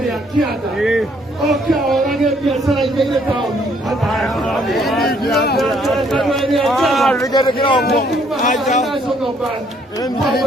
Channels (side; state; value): both; normal; correlation 0.66